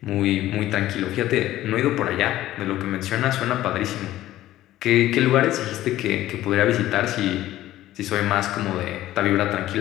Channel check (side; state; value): right; quieter; 14.5 dB